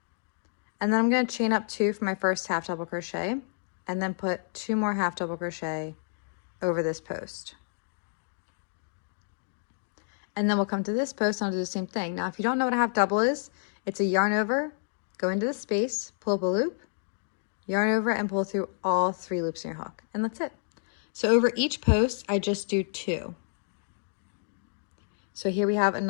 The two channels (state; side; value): silent; right; digital silence